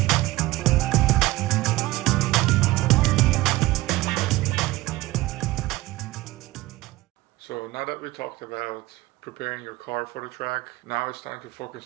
now that we talked about preparing your car for the track, now it's time to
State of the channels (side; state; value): left; quieter; 18.9 dB